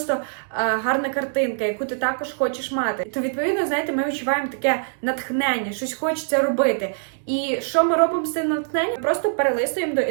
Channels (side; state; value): left; silent; digital silence